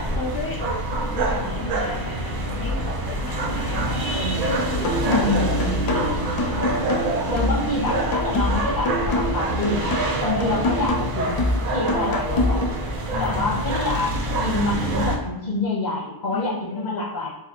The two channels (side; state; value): right; late; 1.0 ms